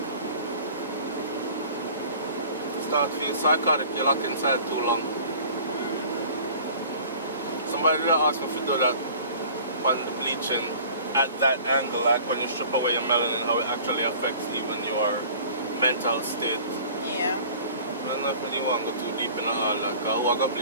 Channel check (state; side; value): inverted; both; correlation -0.46